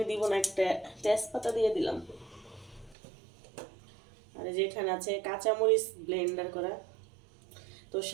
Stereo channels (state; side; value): drops out; left; at 3.0 s